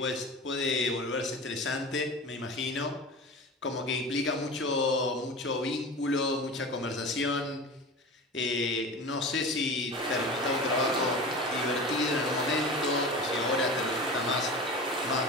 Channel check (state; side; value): normal; both; correlation 0.33